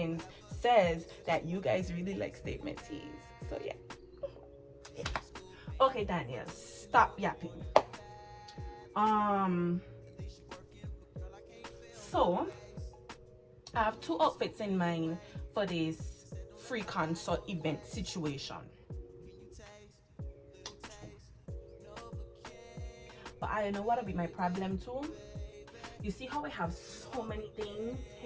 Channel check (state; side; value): identical; both; correlation 1.00